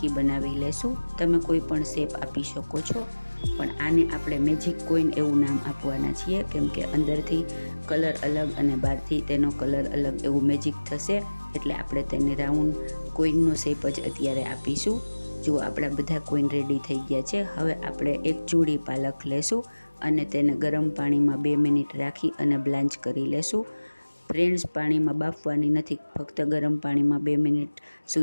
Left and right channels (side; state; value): both; inverted; correlation -1.00